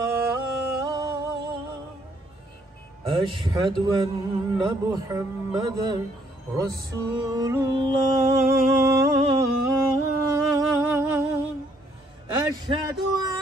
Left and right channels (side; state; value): both; normal; correlation 0.68